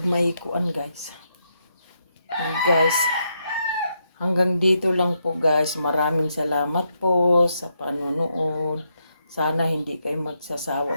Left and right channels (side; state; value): both; inverted; correlation -0.80